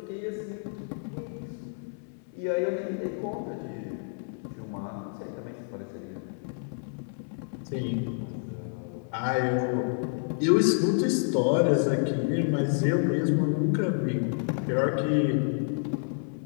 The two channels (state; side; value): silent; right; 59 dB below the other